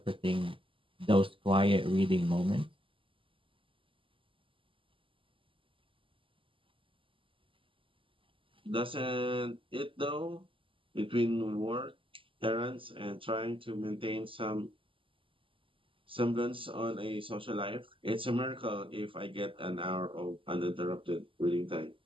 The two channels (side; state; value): left; late; 0.25 ms